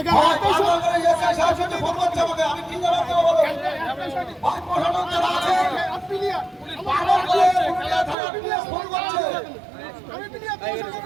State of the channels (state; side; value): drops out; left; at 8.2 s